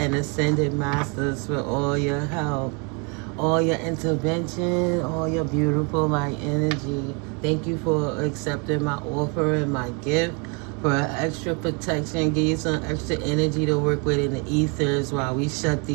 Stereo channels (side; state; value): left; quieter; 33.8 dB